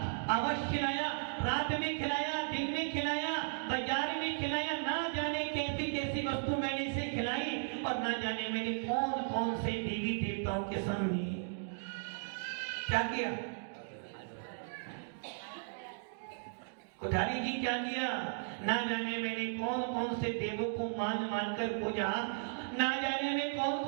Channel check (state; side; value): silent; left; digital silence